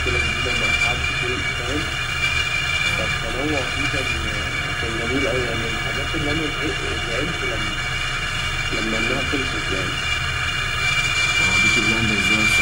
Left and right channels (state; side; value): identical; both; correlation 1.00